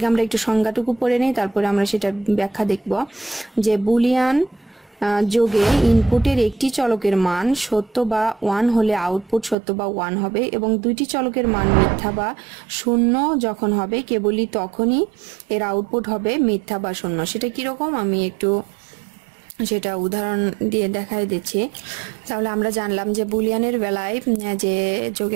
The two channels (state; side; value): drops out; left; at 9.6 s